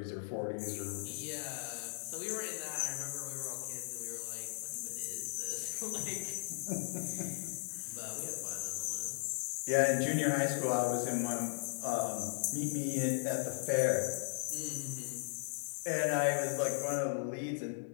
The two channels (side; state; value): right; silent; digital silence